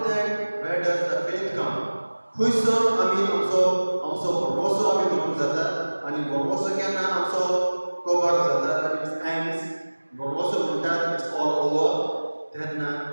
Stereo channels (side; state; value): both; inverted; correlation -1.00